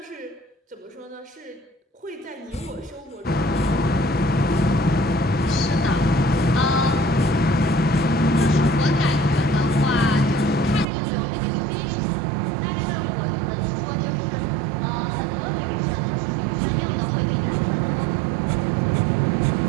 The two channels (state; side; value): drops out; left; at 10.9 s